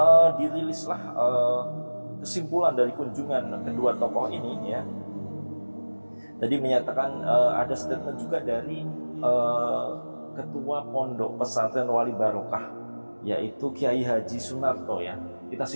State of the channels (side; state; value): both; inverted; correlation -1.00